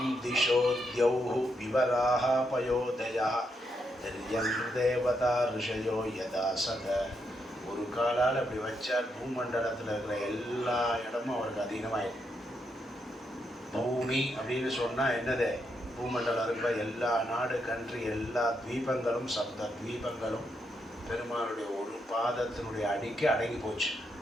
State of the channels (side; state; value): both; normal; correlation 0.80